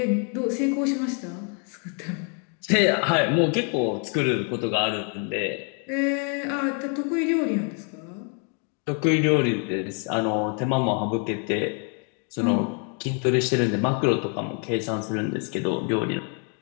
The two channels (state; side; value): quieter; right; 40.0 dB